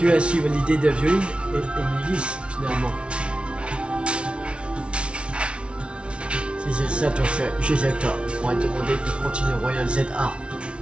as suivi l'idée de Violine et Nivis finalement. Si c'est ça ton fait, Gisector m'aurait demandé de continuer Royal ZA.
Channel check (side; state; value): left; late; 0.059 ms